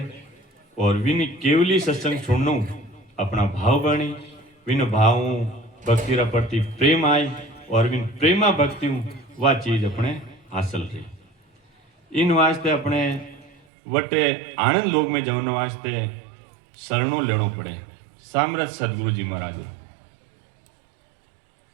और विन केवली सत्संग सुननो अपना भाव बनी, विन भाव भक्ति रा प्रति प्रेम आई और विन प्रेमा भक्ति वह चीज अपने हासिल रही। इन वास्ते अपने वटे आनंद लोक में जवन वास्ते शरणों लेनो पड़े। सामरथ सदगुरु जी महाराज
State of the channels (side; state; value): left; drops out; at 13.6 s